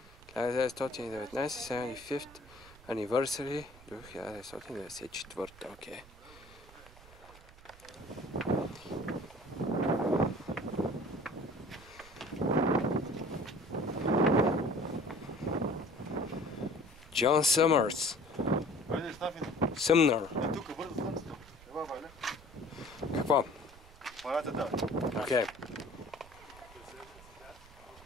1919 75th Anniversary до 1994. Окей. Джон Съмърс. Войде, Стафин. Съмнър. Тук, бързо слънцето. Ева, Валя. Какво? Парата да. Окей.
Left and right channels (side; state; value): right; noise; rumble, 21 dB below the sound